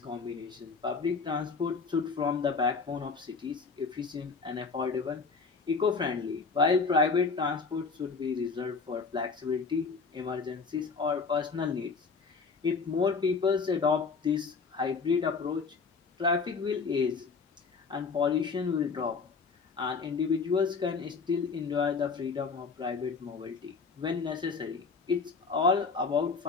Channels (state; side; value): quieter; right; 4.9 dB